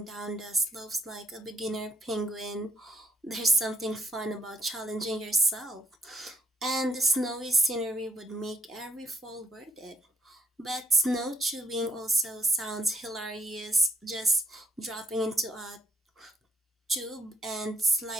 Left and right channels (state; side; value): normal; both; correlation 0.68